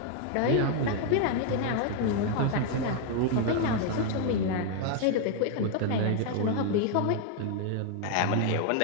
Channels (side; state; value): both; different; correlation 0.00